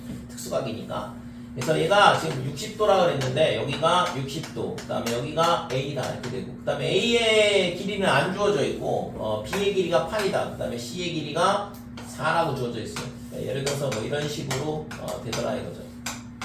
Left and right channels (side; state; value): both; identical; correlation 1.00